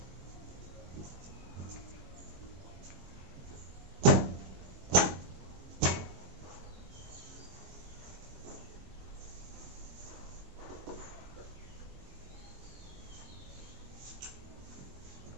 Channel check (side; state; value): left; late; 22 ms